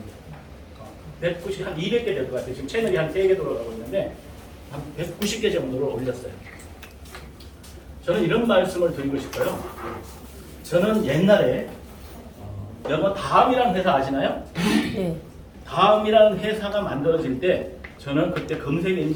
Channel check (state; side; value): identical; both; correlation 1.00